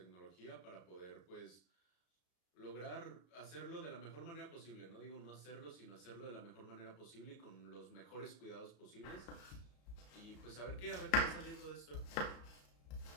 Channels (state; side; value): late; right; 34 ms